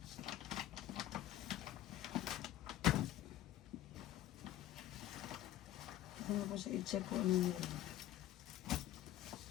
Ano ko siya i-check kung ano yun.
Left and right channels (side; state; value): right; quieter; 13.4 dB